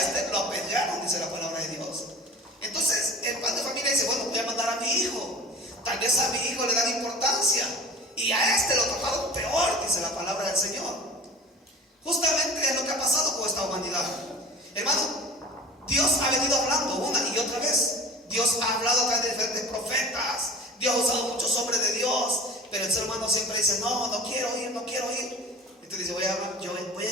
lo apedrearon, dice la palabra de Dios. Entonces el padre de familia dice, bueno, voy a mandar a mi hijo. Tal vez a mi hijo le dan importancia y a este lo trataron peor, dice la palabra del Señor. Justamente es lo que ha pasado con esta humanidad. Hermano, Dios ha venido hablando una y otra vez. Dios ha hablado a través de diferentes profetas. Dios ha usado muchos hombres de Dios, pero el ser humano siempre dice, no, no quiero ir, no quiero ir. Entonces dice, voy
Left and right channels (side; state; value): both; normal; correlation 0.40